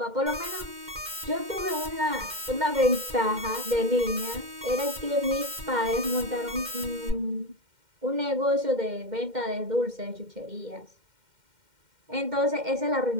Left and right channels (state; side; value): late; left; 2.1 ms